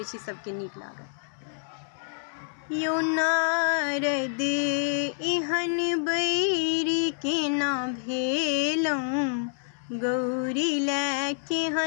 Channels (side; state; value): right; silent; 58 dB below the other